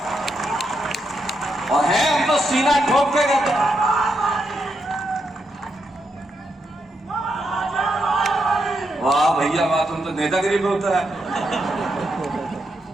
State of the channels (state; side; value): normal; both; correlation 0.82